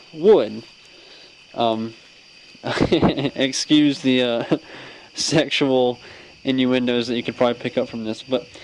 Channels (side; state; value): both; identical; correlation 1.00